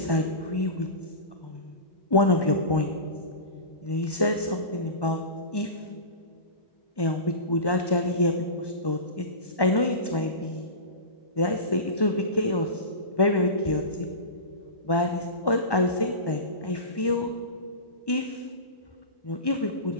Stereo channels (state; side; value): late; right; 1.1 ms